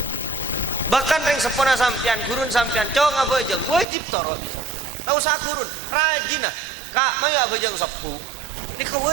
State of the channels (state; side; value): drops out; left; at 3.9 s